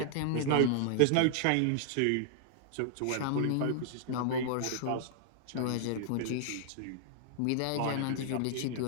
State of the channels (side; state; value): both; different; correlation -0.01